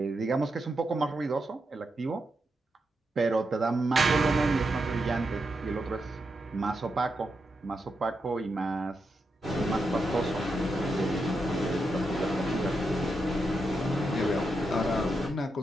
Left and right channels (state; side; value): normal; both; correlation 0.85